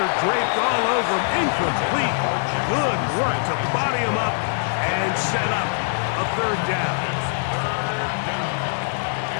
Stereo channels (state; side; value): silent; right; digital silence